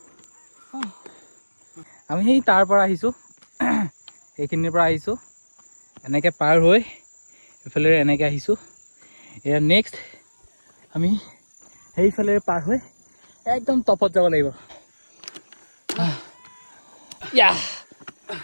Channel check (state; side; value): inverted; both; correlation -1.00